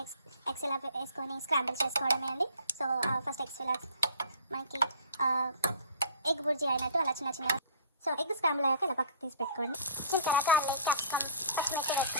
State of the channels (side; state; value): both; inverted; correlation -0.48